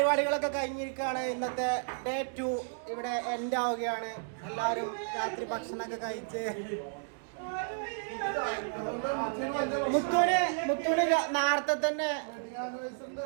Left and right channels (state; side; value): silent; left; digital silence